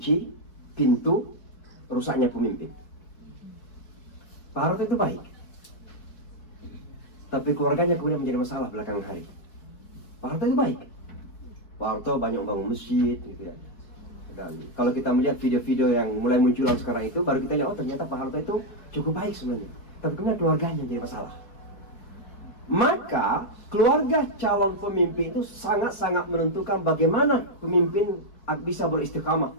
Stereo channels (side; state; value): right; late; 4.6 ms